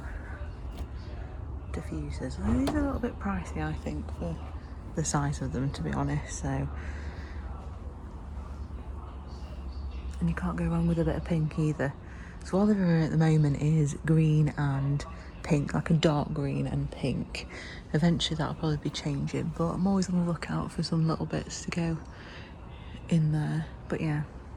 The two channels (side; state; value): both; identical; correlation 1.00